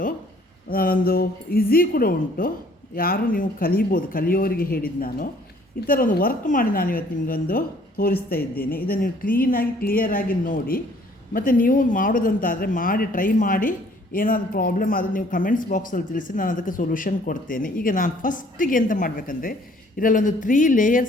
ಒಂದು ಈಸಿ ಕೂಡ ಉಂಟು. ಯಾರು ನೀವು ಕಲಿಬೋದು, ಕಲಿಯೋರಿಗೆ ಹೇಳಿದ್ದು ನಾನು. ಈ ಥರ ಒಂದು ವರ್ಕ್ ಮಾಡಿ ನಾನು ಇವತ್ತು ನಿಮಗೊಂದು ತೋರಿಸ್ತಾ ಇದ್ದೇನೆ. ಇದನ್ನು ನೀವು ಕ್ಲಿಯರಾಗಿ ನೋಡಿ, ಮತ್ತು ನೀವು ಮಾಡೋದಂತಾದರೆ ಮಾಡಿ ಟ್ರೈ ಮಾಡಿ. ಏನಾದರೂ ಪ್ರಾಬ್ಲಮ್ ಆದರೆ ನೀವು ಕಮೆಂಟ್ಸ್ ಬಾಕ್ಸಲ್ಲಿ ತಿಳಿಸಿ, ನಾನು ಅದಕ್ಕೆ ಸೊಲ್ಯೂಷನ್ ಕೊಡ್ತೇನೆ. ಈಗ ನಾನು ಫಸ್ಟಿಗೆ ಎಂತ ಮಾಡಬೇಕಂದ್ರೆ, ಇದರಲ್ಲೊಂದು 3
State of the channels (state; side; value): normal; both; correlation 0.59